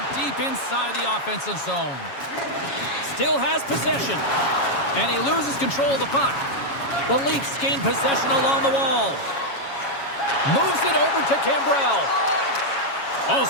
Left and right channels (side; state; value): right; late; 7.2 ms